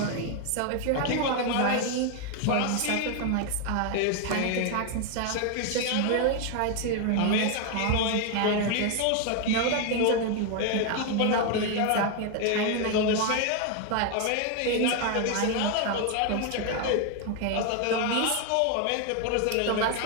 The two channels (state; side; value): different; both; correlation 0.01